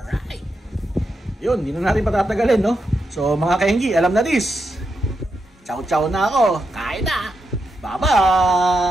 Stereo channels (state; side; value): normal; both; correlation 0.85